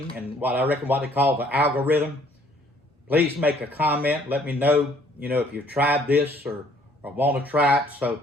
and what I reckon what they call the algorithm. Please make a comment. Let me know, you know, if you've tried this or want to try it. So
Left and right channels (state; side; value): normal; both; correlation 0.61